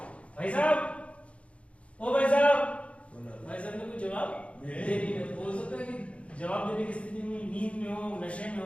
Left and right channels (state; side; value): late; right; 0.062 ms